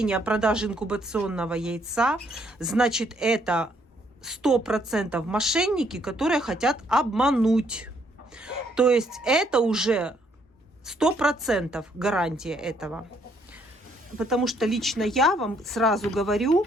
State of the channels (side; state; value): both; normal; correlation 0.69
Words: о продаже инкубационного яйца, значит, это 100% мошенники, которые хотят обмануть. То есть это уже 100% гарантия этого. Потому что лично я вам сразу говорю,